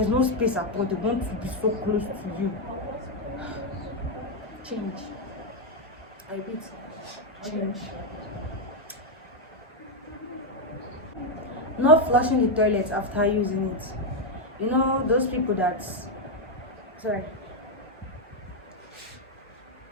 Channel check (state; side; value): normal; both; correlation 0.02